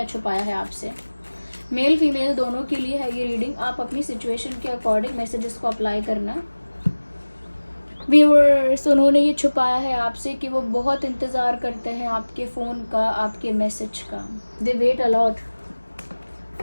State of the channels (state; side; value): inverted; both; correlation -1.00